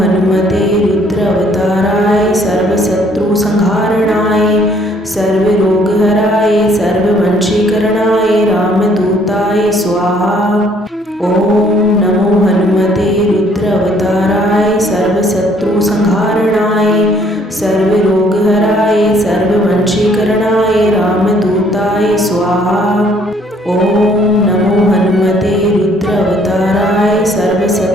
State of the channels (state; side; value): normal; both; correlation 0.63